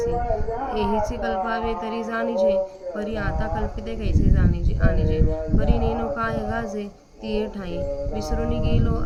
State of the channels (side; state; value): both; identical; correlation 1.00